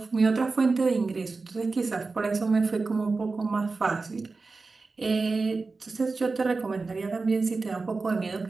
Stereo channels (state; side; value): quieter; left; 4.0 dB